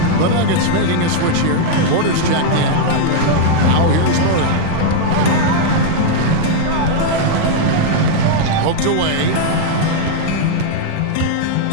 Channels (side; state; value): both; different; correlation -0.01